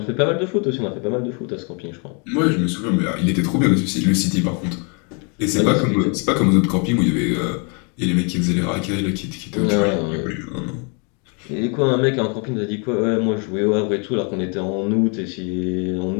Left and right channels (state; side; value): quieter; right; 35.9 dB